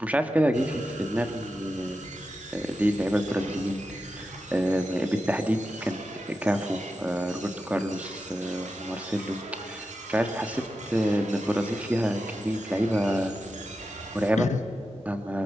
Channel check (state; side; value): normal; both; correlation 0.90